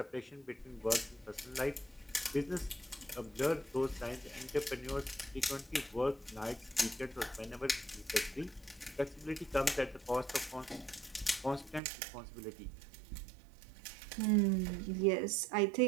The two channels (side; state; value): left; drops out; at 11.8 s